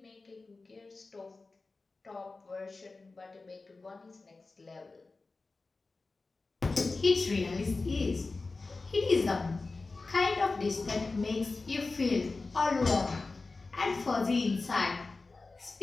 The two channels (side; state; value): right; quieter; 3.7 dB